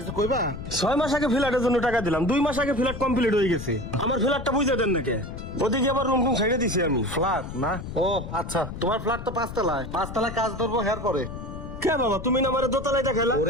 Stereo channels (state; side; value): noise; left; rumble, 9 dB below the sound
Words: কইবা? 6 মাস আগে ফ্ল্যাটের জন্য টাকা দিলাম, 2 মাস আগে ফ্ল্যাট কমপ্লিট হয়ে গেছে। আমার ফ্ল্যাটটা বুঝে দেন নাকি? ওদিকে আবার রুম টুম ছেড়ে দিছি আমি। ফ্ল্যাট না? ও আচ্ছা, তোমার ফ্ল্যাট তো 5 তলায়, 5 তলায় কাজ ধরবো হের পরে। কে বাবা, তুমি না আমার দোতলায় দেখাইলা?